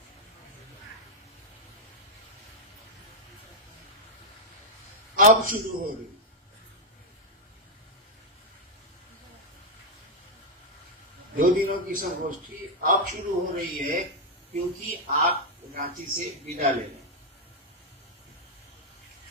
अब शुरू हो रही। दो दिनों की संगोष्ठी अब शुरू हो रही है क्योंकि आप रांची से विदा ले रहे हैं।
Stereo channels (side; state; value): both; normal; correlation -0.01